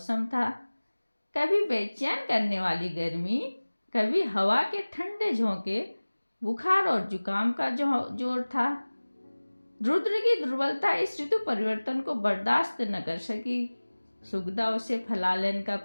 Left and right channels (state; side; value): inverted; both; correlation -1.00